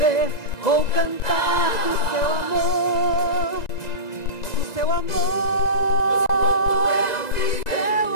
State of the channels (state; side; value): late; right; 1.9 ms